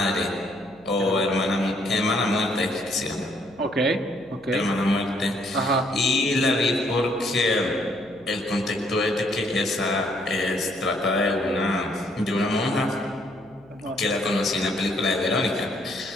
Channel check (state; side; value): noise; left; hum, 29 dB below the sound